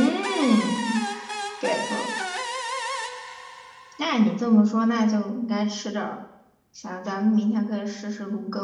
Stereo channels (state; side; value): identical; both; correlation 1.00